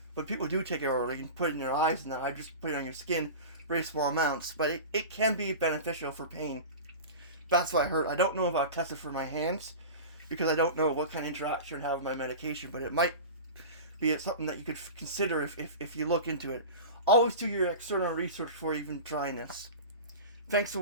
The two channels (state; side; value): inverted; both; correlation -0.31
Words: but people do take it orally and put it in their eyes, and I just put it on your skin, very small amounts. But it can be beneficial for pain. That's what I heard. I don't know if I'll test it for my hands, because I don't know what kind of interaction it would have with my medication, but it might be something that you could consider if you look into it. Always do your external research before even trying this. Thanks for